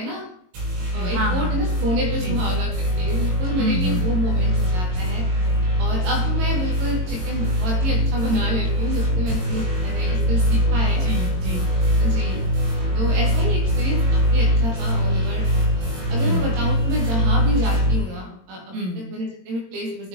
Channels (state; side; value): late; left; 22 ms